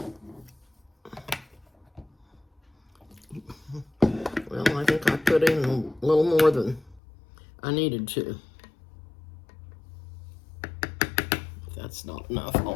Well, I think I put in a little more than I needed to. If that's not enough,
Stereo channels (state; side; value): drops out; right; at 7.0 s